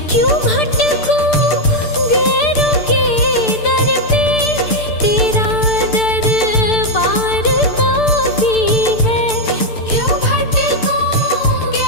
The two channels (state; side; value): late; right; 6.7 ms